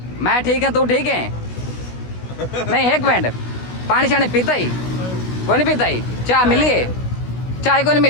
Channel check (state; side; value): late; right; 16 ms